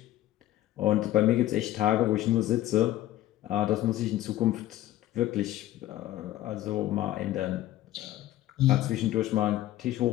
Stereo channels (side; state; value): right; quieter; 14.3 dB